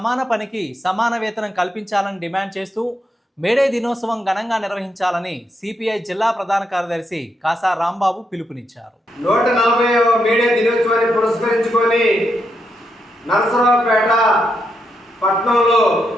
పనికి సమాన వేతనం కల్పించాలని డిమాండ్ చేస్తూ మేడే దినోత్సవం ఘనంగా నిర్వహించాలని సిపిఐ జిల్లా ప్రధాన కార్యదర్శి కాసా రాంబాబు పిలుపునిచ్చారు. 140వ మేడే దినోత్సవాన్ని పురస్కరించుకొని నరసరావుపేట పట్టణంలో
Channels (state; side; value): normal; both; correlation 0.81